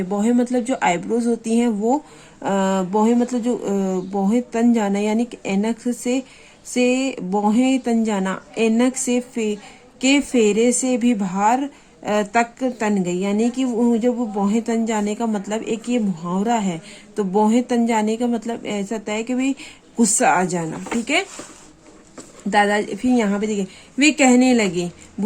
भौहें मतलब जो आईब्रोज होती हैं वो भौहें मतलब जो भौहें तन जाना, यानी कि ऐनक से भौहें तन जाना, ऐनक से के फेरे से भी बाहर तक तन गई। यानी कि जब वो भौहें तन जाने का मतलब, एक ये मुहावरा है। तो भौहें तन जाने का मतलब ऐसा होता है कि भाई गुस्सा आ जाना, ठीक है। दादा फिर यहाँ पे देखिए, वे कहने लगे,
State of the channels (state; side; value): identical; both; correlation 1.00